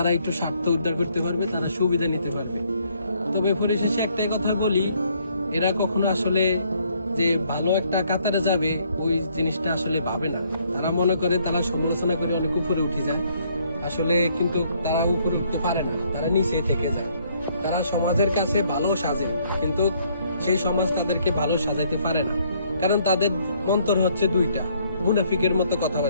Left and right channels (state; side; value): inverted; both; correlation -0.67